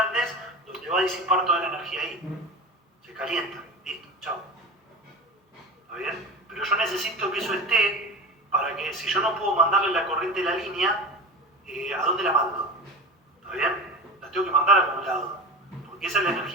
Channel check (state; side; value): normal; both; correlation 0.30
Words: donde va a disipar toda la energía ahí. Se calienta. Listo, chao. ¿Está bien? Pero yo necesito que eso esté para que, si yo no puedo mandarle la corriente de la línea, ¿a dónde la mando? ¿Está bien? La tengo que mandar a algún lado. Porque esa es la